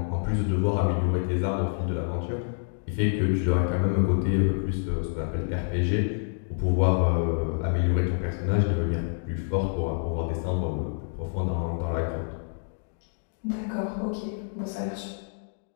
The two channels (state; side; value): silent; right; digital silence